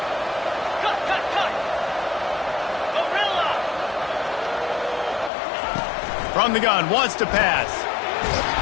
From the gun, wants to pass.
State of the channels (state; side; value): drops out; right; at 5.3 s